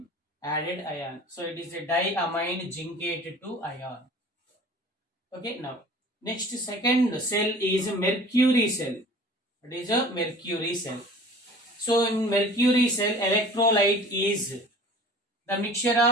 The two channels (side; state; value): both; normal; correlation 0.45